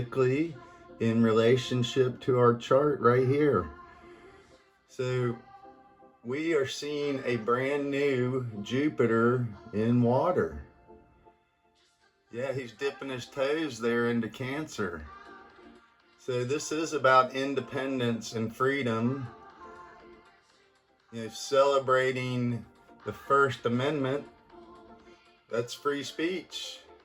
in relationship to our chart right here. So we are seeing a brand new Jupiter in water. Yeah, he's dipping his toes there into Cancer. So this is about independence and freedom, celebrating the First Amendment. That's free speech.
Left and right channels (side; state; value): both; identical; correlation 1.00